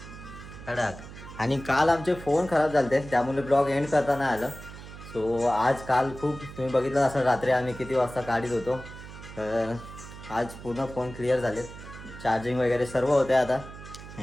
कडक. आणि काल आमचे फोन खराब झाले त्यामुळे ब्लॉग एंड करता नाही आलं. सो काल खूप तुम्ही बघितलं असं रात्री आम्ही किती वाजता काढीत होतो. तर आज पूर्ण फोन क्लिअर झाले, चार्जिंग वगैरे सर्व होते आता.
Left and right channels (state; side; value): noise; right; hum, 14 dB below the sound